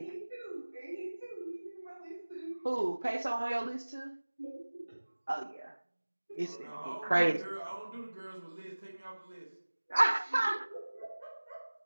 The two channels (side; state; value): both; inverted; correlation -1.00